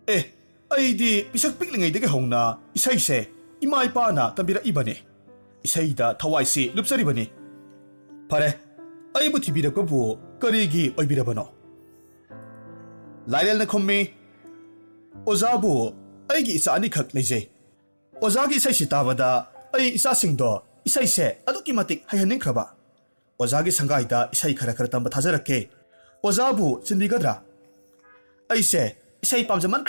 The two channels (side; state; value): both; inverted; correlation -1.00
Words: ꯑꯩꯗꯤ ꯄꯤꯁꯛ ꯄꯤꯛꯂꯤꯉꯩꯗꯒꯤ ꯍꯧꯅ ꯏꯁꯩꯁꯦ ꯏꯃꯥ ꯏꯄꯥꯅ ꯇꯝꯕꯤꯔꯛꯏꯕꯅꯤ ꯏꯁꯩꯗ ꯊꯋꯥꯏꯁꯤ ꯂꯨꯞꯆꯔꯤꯕꯅꯤ ꯐꯔꯦ ꯑꯩꯕꯨ ꯊꯤꯕꯤꯔꯛꯄꯕꯨ ꯀꯔꯤꯒꯤ ꯑꯣꯏꯕꯤꯔꯕꯅꯣ ꯂꯥꯏꯔꯦꯜꯅ ꯈꯨꯝꯃꯤ ꯑꯣꯖꯥꯕꯨ ꯑꯩꯒꯤ ꯏꯆꯥ ꯑꯅꯤꯈꯛ ꯂꯩꯖꯩ ꯑꯣꯖꯥꯒꯤ ꯏꯁꯩꯁꯤ ꯇꯥꯕꯗ ꯑꯩ ꯏꯆꯥꯁꯤꯡꯗꯣ ꯏꯁꯩꯁꯦ ꯑꯗꯨꯛꯀꯤ ꯃꯇꯤꯛ ꯍꯩꯍꯟꯅꯤꯡꯈ꯭ꯔꯕ ꯑꯣꯖꯥꯒꯤ ꯁꯪꯒꯥꯏꯗ ꯏꯁꯩ ꯈꯔ ꯇꯝꯕ ꯊꯥꯖꯔꯛꯀꯦ ꯑꯣꯖꯥꯕꯨ ꯆꯤꯟꯕꯤꯒꯗ꯭ꯔꯥ ꯑꯩꯁꯦ ꯏꯁꯩ